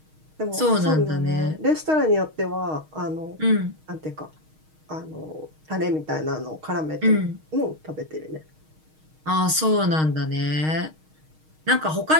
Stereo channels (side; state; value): left; late; 6.4 ms